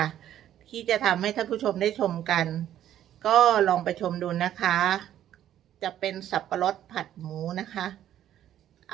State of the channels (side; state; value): left; quieter; 11.5 dB